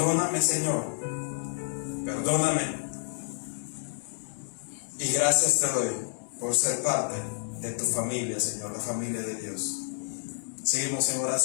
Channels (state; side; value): silent; right; digital silence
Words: Señor. Perdóname. Y gracias te doy por ser parte de tu familia, Señor, la familia de Dios. Seguimos en